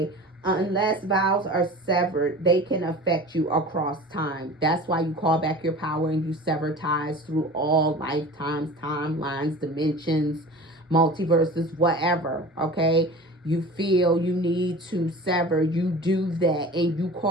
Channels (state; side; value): normal; both; correlation 0.38